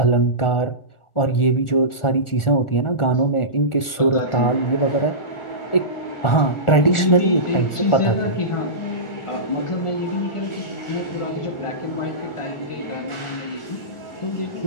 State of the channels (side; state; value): right; late; 1.4 ms